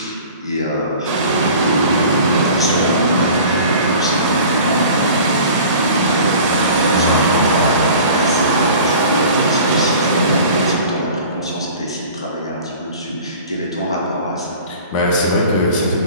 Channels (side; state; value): both; inverted; correlation -0.43